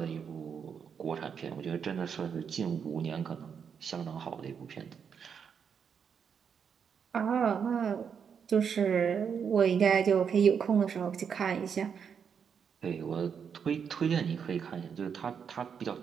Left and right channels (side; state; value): left; quieter; 7.0 dB